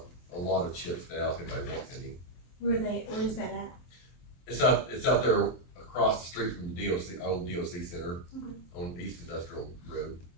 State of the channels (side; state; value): right; late; 23 ms